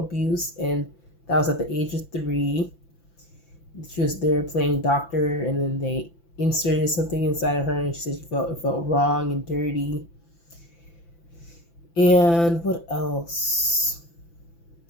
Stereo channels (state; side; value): late; right; 5.9 ms